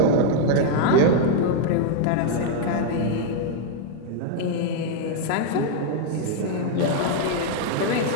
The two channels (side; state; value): both; different; correlation 0.00